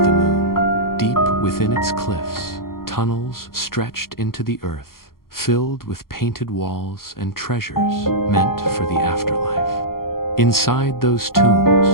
the moon. Deep within its cliffs, tunnels stretched into the earth, filled with painted walls and treasures meant for the afterlife. Inside those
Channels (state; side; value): late; right; 0.92 ms